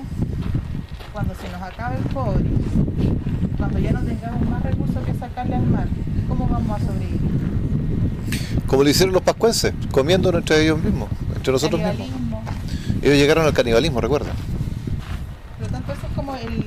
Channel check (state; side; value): identical; both; correlation 1.00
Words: cuando se nos acabe el cobre, cuando ya no tengamos más recursos que sacarle al mar, ¿cómo vamos a sobrevivir? Como lo hicieron los pascuenses, comiendo entre ellos mismos, entre nosotros mismos. Ellos llegaron al canibalismo, recuerda. Por lo tanto, eso es como